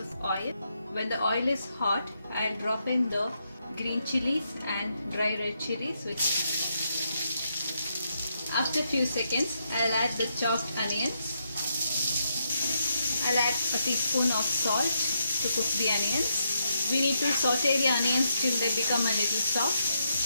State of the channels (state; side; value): inverted; both; correlation -0.80